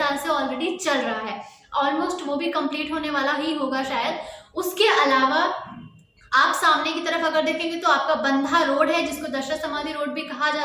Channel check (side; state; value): both; identical; correlation 1.00